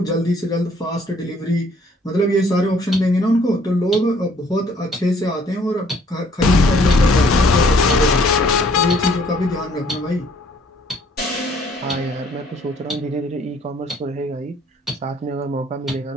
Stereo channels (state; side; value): normal; both; correlation 0.61